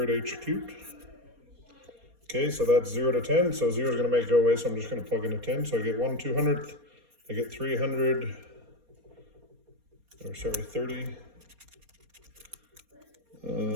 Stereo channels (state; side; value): late; left; 4.2 ms